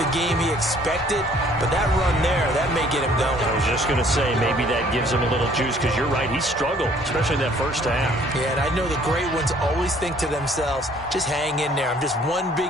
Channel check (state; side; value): normal; both; correlation 0.59